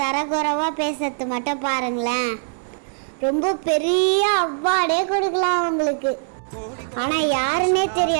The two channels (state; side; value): silent; left; digital silence